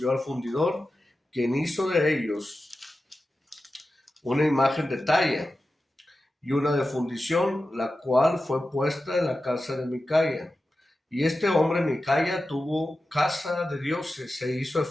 al fundidor, quien hizo de ellos una imagen de talla y una de fundición, la cual fue puesta en la casa de Micaía. Y este hombre Micaía tuvo casa de dioses, se hizo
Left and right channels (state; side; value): normal; both; correlation 0.93